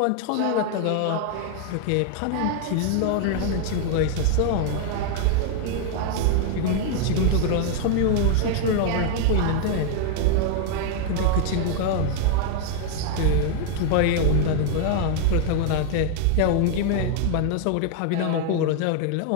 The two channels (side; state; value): both; different; correlation 0.00